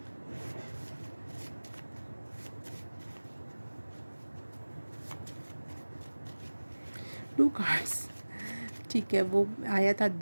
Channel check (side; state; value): both; inverted; correlation -1.00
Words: टू कार्ड्स, ठीक है, वो आया था